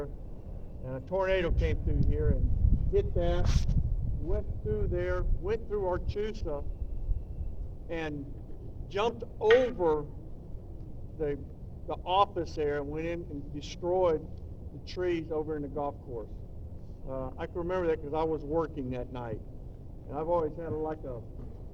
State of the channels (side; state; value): both; identical; correlation 1.00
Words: and a tornado came through here and hit that, went through there, went through Archusa, and jumped over the office there and went in and destroyed the trees over in the golf course. I can remember that because I was working that night, and I've always had a